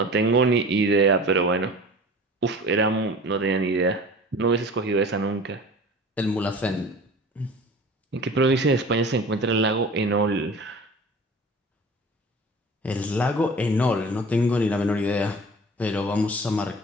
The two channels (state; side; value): normal; both; correlation 0.40